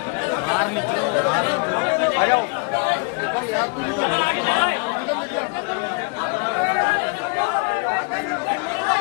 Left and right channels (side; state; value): right; quieter; 33.1 dB